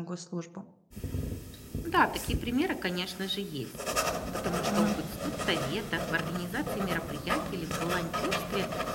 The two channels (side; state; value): both; identical; correlation 1.00